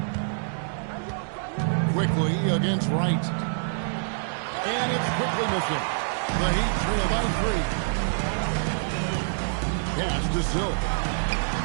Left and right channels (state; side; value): silent; left; digital silence